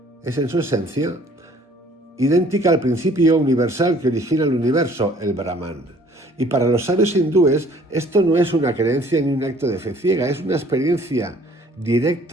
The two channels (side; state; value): both; normal; correlation 0.56